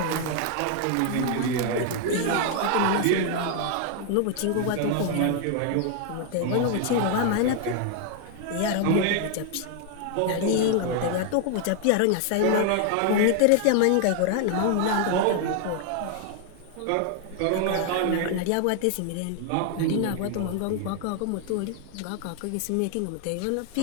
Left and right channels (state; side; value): different; both; correlation 0.00